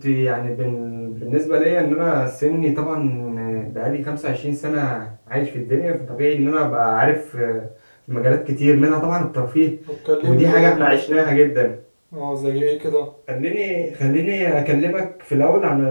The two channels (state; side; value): inverted; both; correlation -1.00